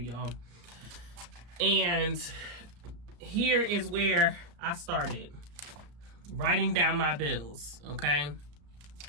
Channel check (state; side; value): late; left; 34 ms